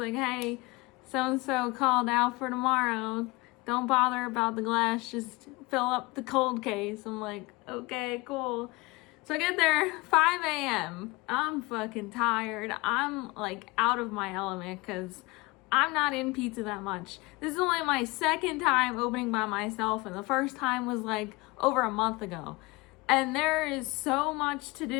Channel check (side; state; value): right; quieter; 24.1 dB